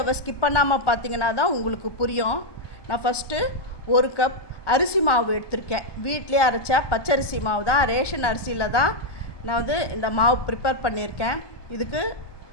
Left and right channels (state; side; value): late; right; 1.2 ms